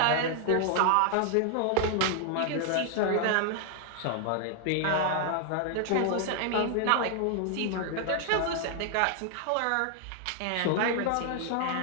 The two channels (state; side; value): different; both; correlation 0.00